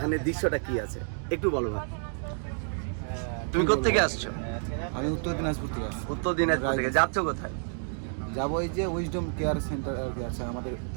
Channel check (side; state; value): left; silent; 58 dB below the other